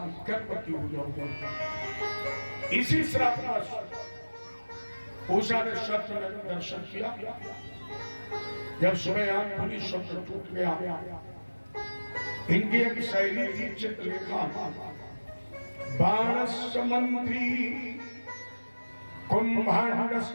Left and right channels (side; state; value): both; inverted; correlation -1.00